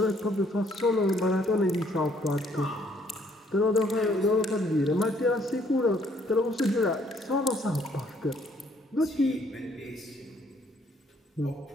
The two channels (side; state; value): both; normal; correlation 0.65